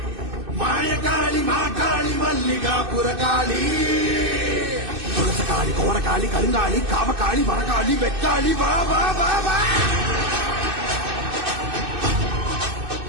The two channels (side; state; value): left; late; 2.6 ms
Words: மாயகாளி மாகாளி மல்லிகாபுர காளி துளசகாளி கோரகாளி கருங்காளி காமகாளி வரகாளி வெக்காளி வா வா வா வா